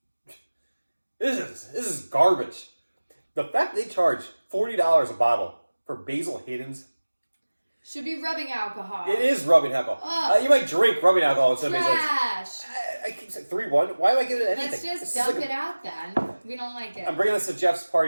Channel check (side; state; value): both; inverted; correlation -1.00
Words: This is garbage. The fact they charge $40 a bottle for Basil Hayden's should be rubbing alcohol. It is rubbing alcohol. You might drink rubbing alcohol instead of Basil Hayden's. Trash. I keep saying 3-1. Why am I giving it anything? Let's just dump it out then. We don't like it. I'm bringing this to Jeff's